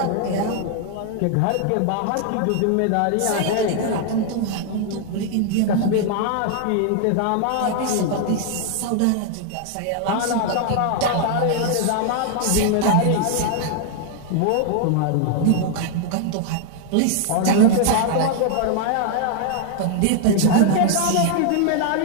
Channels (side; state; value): both; different; correlation 0.00